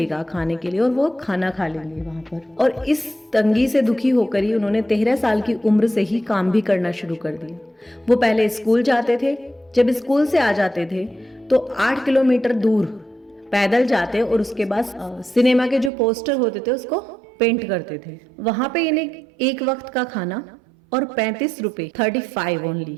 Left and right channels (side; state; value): left; drops out; at 15.9 s